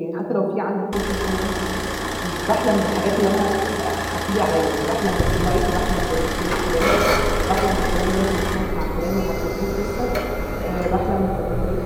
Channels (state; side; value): identical; both; correlation 1.00